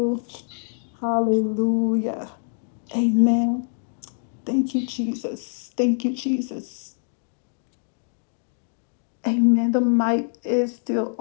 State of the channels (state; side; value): silent; right; 62 dB below the other